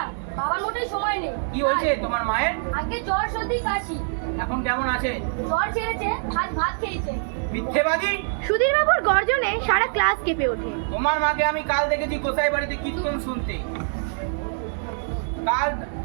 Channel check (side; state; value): left; silent; digital silence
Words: বাবার মোটেই সময় নেই। কি হয়েছে তোমার মায়ের? আগে জ্বর সর্দি কাশি। এখন কেমন আছে? জ্বর ছেড়েছে, আজ ভাত খেয়েছে। মিথ্যেবাদী! সুধীরবাবুর গর্জনে সারা ক্লাস কেঁপে ওঠে। তোমার মাকে আমি কাল দেখেছি গোসাই বাড়িতে কীর্তন শুনতে। কাল